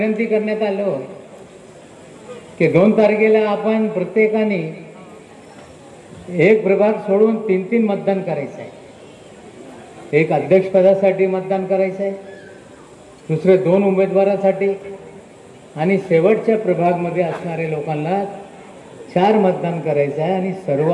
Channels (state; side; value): identical; both; correlation 1.00